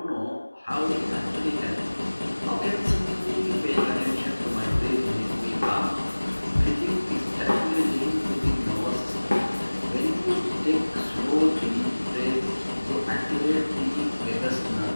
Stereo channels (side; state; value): both; inverted; correlation -1.00